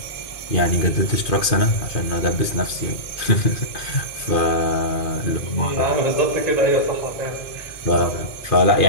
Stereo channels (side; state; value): right; late; 2.4 ms